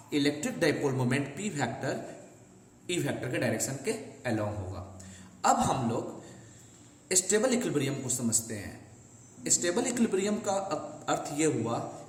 electric dipole moment P vector E vector के डायरेक्शन के अलोंग होगा। अब हम लोग स्टेबल इक्विलिब्रियम को समझते हैं। स्टेबल इक्विलिब्रियम का अर्थ यह हुआ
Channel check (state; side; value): identical; both; correlation 1.00